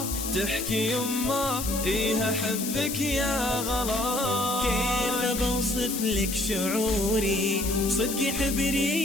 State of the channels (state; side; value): noise; left; hiss, 5 dB below the sound